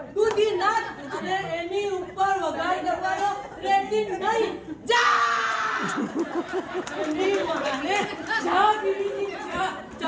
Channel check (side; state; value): both; identical; correlation 1.00